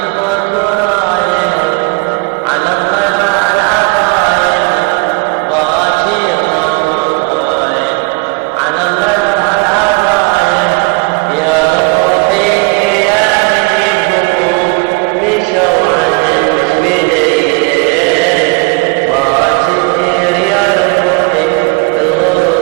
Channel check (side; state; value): left; quieter; 29.5 dB